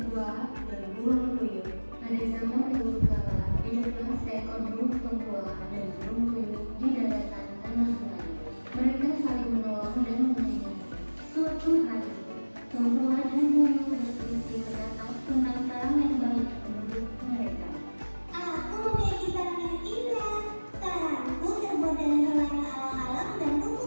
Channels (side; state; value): both; inverted; correlation -1.00